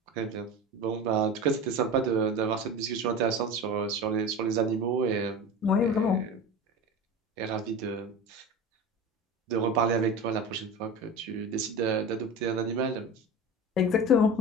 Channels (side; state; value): both; normal; correlation 0.30